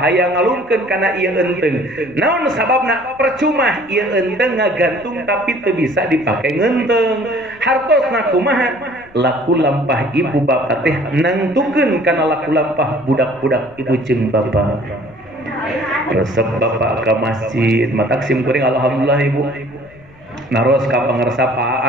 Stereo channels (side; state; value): left; noise; rumble, 26 dB below the sound